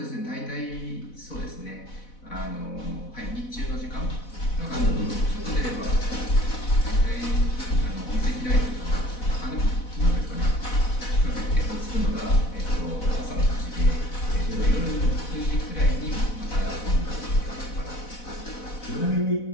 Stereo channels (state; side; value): late; right; 4.1 ms